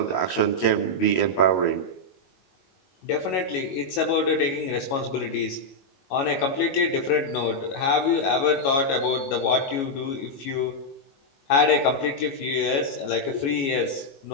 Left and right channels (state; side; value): late; right; 22 ms